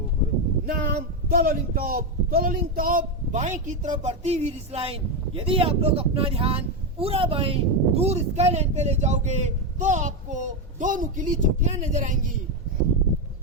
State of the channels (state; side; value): normal; both; correlation 0.08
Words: नाम तोलोलिंग टॉप। तोलोलिंग टॉप बाएं की तरफ बढ़ती हुई रिसलाइन। यदि आप लोग अपना ध्यान पूरा बाएं दूर स्काई लाइन पे ले जाओगे तो आपको दो नुकीली चोटियां नजर आएंगी।